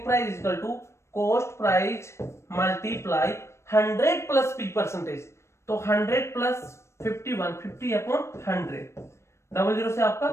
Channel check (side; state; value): right; late; 0.13 ms